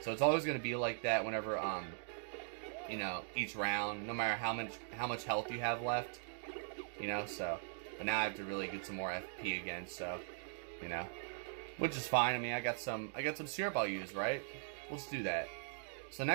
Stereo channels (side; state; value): left; silent; digital silence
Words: So it's always gonna be like that whenever you know, each round, no matter how much health you have left. You know, so but now I have to really get some more FP again, so you know. Which is fine. I mean, I got some syrup I'll use, right? Let's do that. So